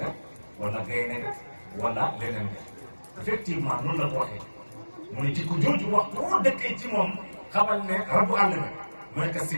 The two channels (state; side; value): inverted; both; correlation -1.00